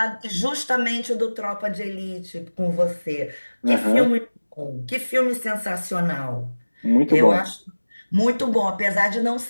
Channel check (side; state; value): both; inverted; correlation -1.00